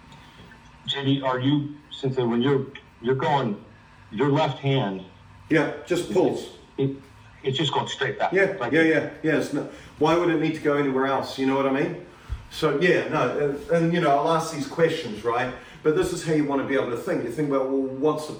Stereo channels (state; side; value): identical; both; correlation 1.00